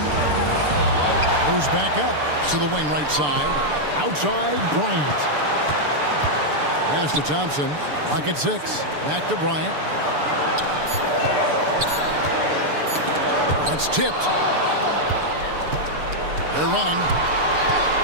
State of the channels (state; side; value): late; left; 6.8 ms